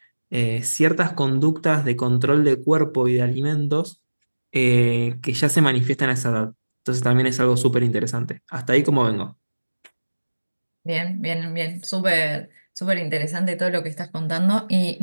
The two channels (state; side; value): inverted; both; correlation -1.00